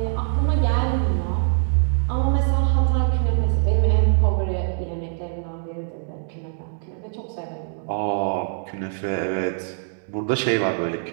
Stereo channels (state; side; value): silent; left; 63 dB below the other